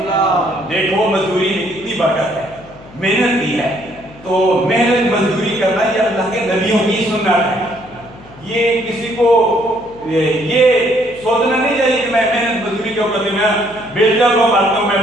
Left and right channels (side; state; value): left; noise; hum, 22 dB below the sound